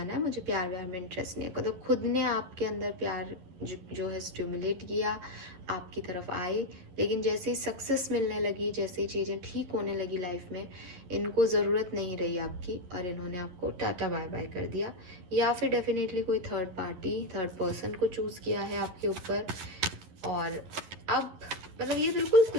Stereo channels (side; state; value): left; late; 11 ms